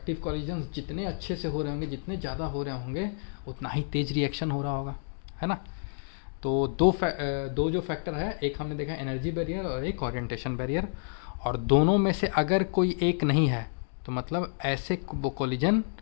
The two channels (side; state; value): right; silent; digital silence